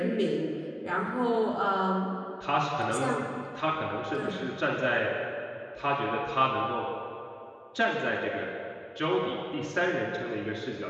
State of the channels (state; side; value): identical; both; correlation 1.00